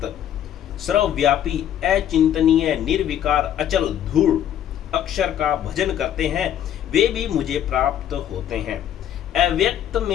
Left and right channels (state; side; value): quieter; right; 10.5 dB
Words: सर्वव्यापी, अचिंतनीय, निर्विकार, अचल, धूल अक्षर का भजन करते हैं, वे भी मुझे प्राप्त होते हैं। अव्यक्त